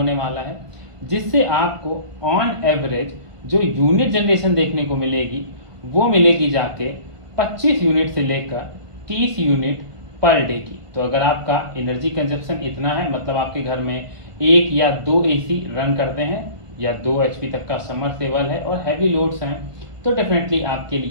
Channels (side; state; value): left; late; 1.5 ms